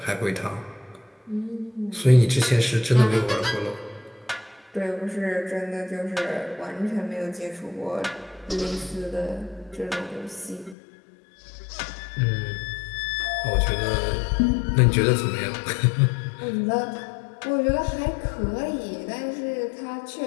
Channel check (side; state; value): right; drops out; at 10.8 s